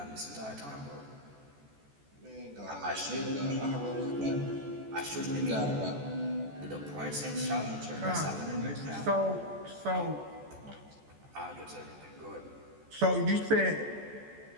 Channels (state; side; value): late; left; 14 ms